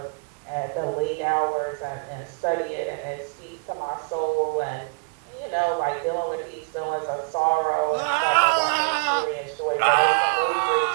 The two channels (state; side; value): quieter; left; 36.3 dB